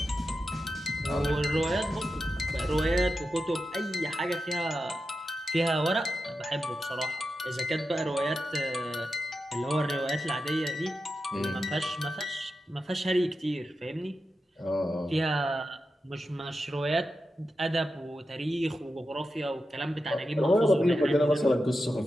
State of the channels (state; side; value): normal; both; correlation 0.90